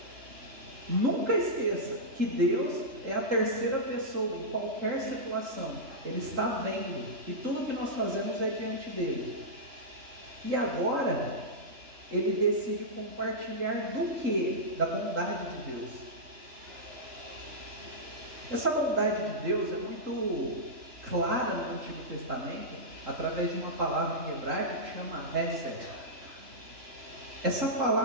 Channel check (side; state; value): left; late; 3.8 ms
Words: Nunca esqueça que Deus é a terceira pessoa em qualquer situação. Ele está vendo, e tudo que nós fazemos é diante dele. E agora, ele decide compartilhar do que? Da bondade de Deus. Essa bondade de Deus é muito clara no Antigo Testamento, através de uma palavra em hebraico que chama Hesed. Essa